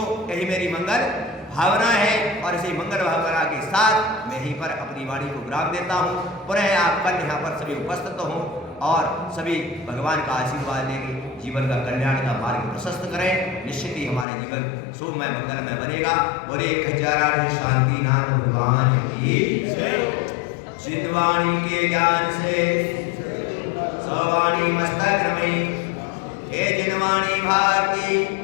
यही मेरी मंगल भावना है और इसी मंगल भावना के साथ मैं यहीं पर अपनी वाणी को विराम देता हूँ। पुनः आप कल यहाँ पर सभी उपस्थित हों और सभी भगवान का आशीर्वाद लेके जीवन का कल्याण का मार्ग प्रशस्त करें। निश्चित ही हमारे जीवन शुभमय मंगलमय बनेगा। बोले खजाना शांति नाम भगवान की चितवाणी के ज्ञान से सवाणी मस्तक में हे जिनवाणी भारती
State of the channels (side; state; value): right; drops out; at 14.2 s